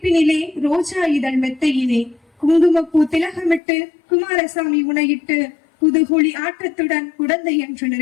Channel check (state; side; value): drops out; right; at 3.6 s